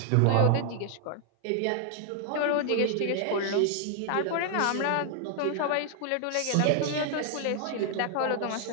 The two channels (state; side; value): different; both; correlation 0.00